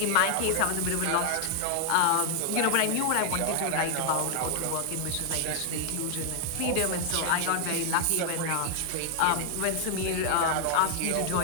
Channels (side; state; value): both; different; correlation 0.00